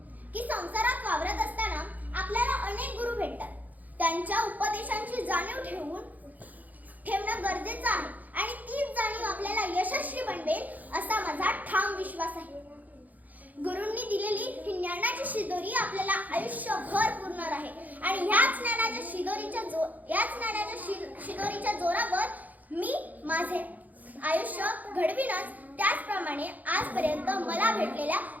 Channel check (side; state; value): left; late; 0.080 ms